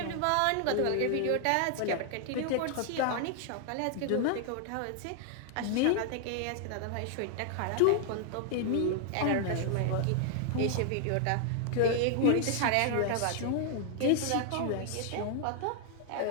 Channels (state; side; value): different; both; correlation 0.00